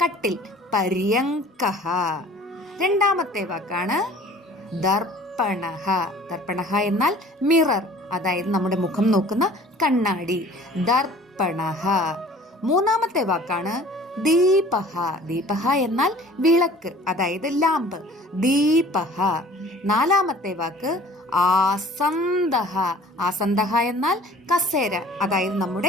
കട്ടിൽ, പര്യങ്കഃ. രണ്ടാമത്തെ വാക്കാണ് ദർപ്പണഃ. ദർപ്പണഃ എന്നാൽ മിറർ, അതായത് നമ്മുടെ മുഖം നോക്കുന്ന കണ്ണാടി, ദർപ്പണഃ. മൂന്നാമത്തെ വാക്കാണ് ദീപഃ. ദീപഃ എന്നാൽ വിളക്ക്, അതായത് ലാമ്പ്, ദീപഃ. നാലാമത്തെ വാക്ക് ആസന്ദഃ. ആസന്ദഃ എന്നാൽ കസേര, അതായത്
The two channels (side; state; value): both; normal; correlation 0.49